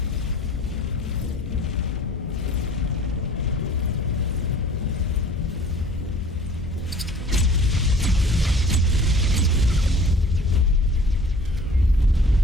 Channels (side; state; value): both; normal; correlation 0.48